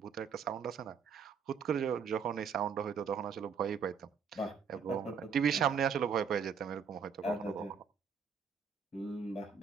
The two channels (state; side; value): quieter; left; 6.5 dB